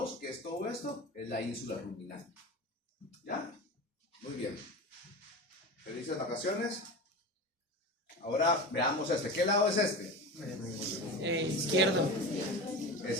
que es todo esto, es la ínsula ruminal. ¿Ya? Muy bien. Felices vacaciones. Ahora veamos este. ¿Qué lado es este? Izquierdo.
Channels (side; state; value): both; normal; correlation 0.28